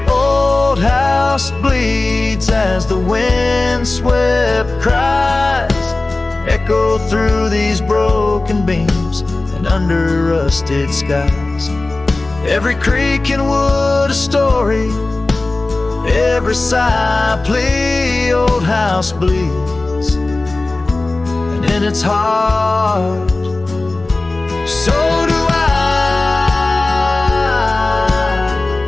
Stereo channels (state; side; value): quieter; right; 3.1 dB